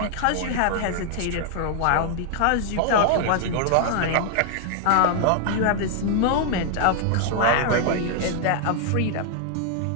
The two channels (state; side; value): different; both; correlation 0.00